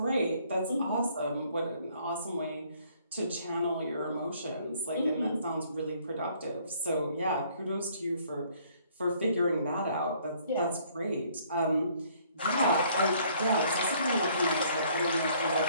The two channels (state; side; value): inverted; both; correlation -0.62